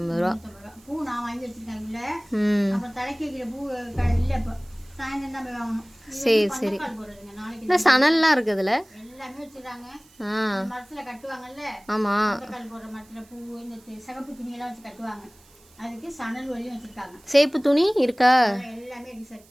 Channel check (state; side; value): noise; right; hiss, 28 dB below the sound